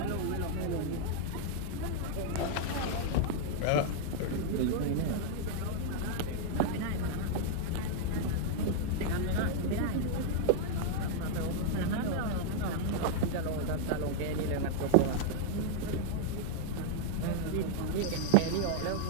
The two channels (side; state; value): both; different; correlation 0.00